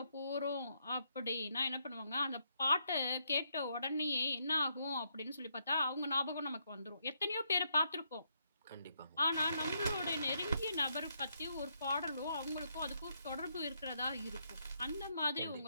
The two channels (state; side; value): inverted; both; correlation -0.76